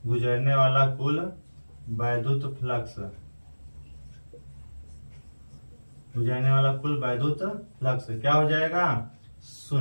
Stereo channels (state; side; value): inverted; both; correlation -1.00